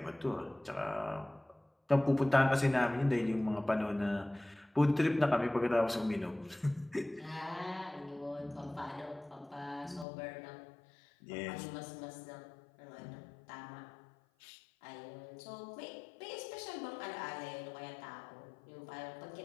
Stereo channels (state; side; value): drops out; right; at 10.1 s